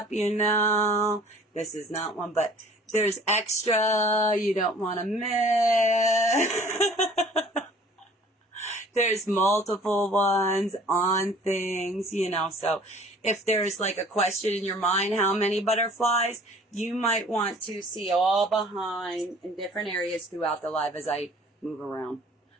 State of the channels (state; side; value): normal; both; correlation 0.51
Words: you know. This is not one, but there's extra you don't want to miss. There's multiple ones on things, you know. So if there's like a question in your mind, how many butterflies, you might want to see all behind in different areas throughout the live as I move around.